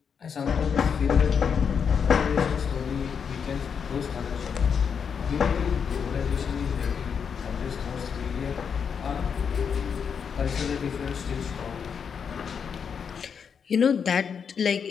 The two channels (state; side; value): quieter; right; 6.7 dB